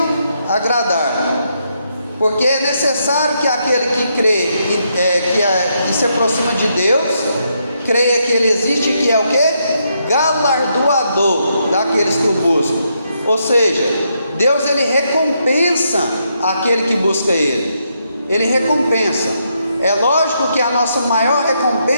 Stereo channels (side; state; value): both; inverted; correlation -0.78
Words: agradar, porque é necessário que aquele que crê, que se aproxima de Deus, creia que Ele existe, que é o que? Galardoador daqueles que o buscam. Ou seja, Deus, Ele recompensa aquele que busca Ele. Ele recompensa. É lógico que a nossa maior